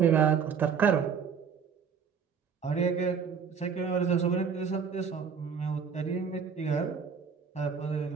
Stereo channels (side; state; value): left; quieter; 6.4 dB